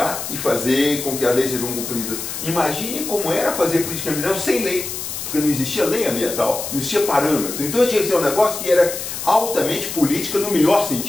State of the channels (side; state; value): left; noise; hiss, 6 dB below the sound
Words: e fazer com que as leis sejam cumpridas. Imagine como era fazer política ambiental sem lei, porque não existia lei ambiental, não existia parâmetro. Então tinha que ser um negócio que era altamente política no melhor